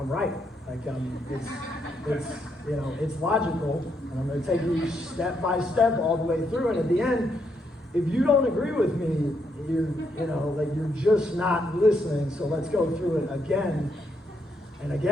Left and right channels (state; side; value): normal; both; correlation 0.77